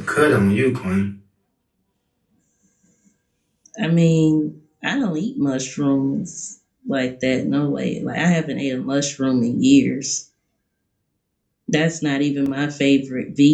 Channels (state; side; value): identical; both; correlation 1.00